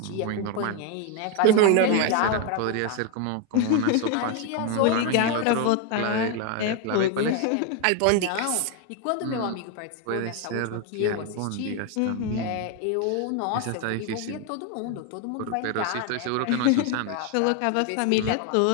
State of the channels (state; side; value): different; both; correlation 0.01